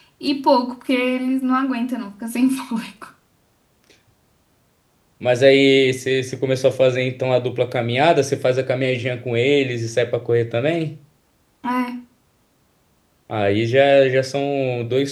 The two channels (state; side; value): identical; both; correlation 1.00